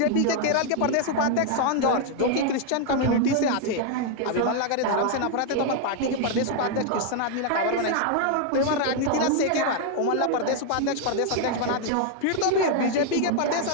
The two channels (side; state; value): both; different; correlation 0.00